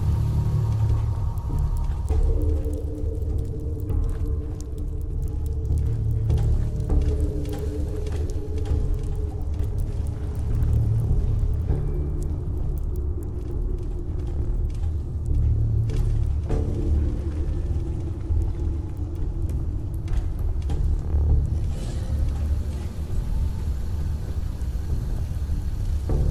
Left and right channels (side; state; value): both; identical; correlation 1.00